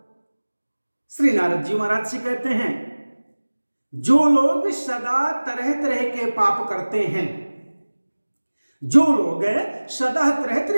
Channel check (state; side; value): inverted; both; correlation -1.00